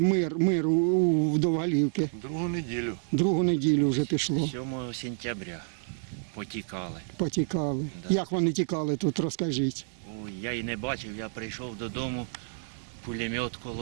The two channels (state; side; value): silent; left; digital silence